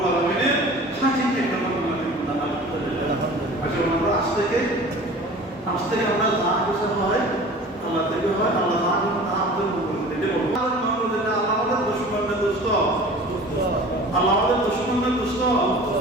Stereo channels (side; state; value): both; normal; correlation 0.42